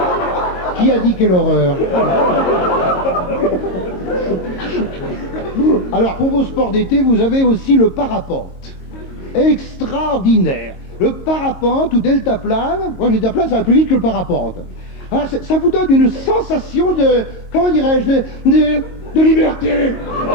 Qui a dit quelle horreur? Alors, pour vos sports d'été, vous avez aussi le parapente. Extraordinaire. Le parapente ou deltaplane, moi le deltaplane ça va plus vite que le parapente. Ah, ça vous donne une sensation de, comment dirais-je, de liberté.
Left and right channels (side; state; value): right; late; 22 ms